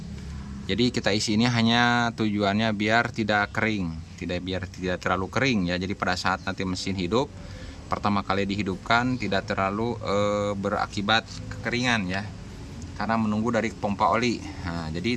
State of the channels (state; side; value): identical; both; correlation 1.00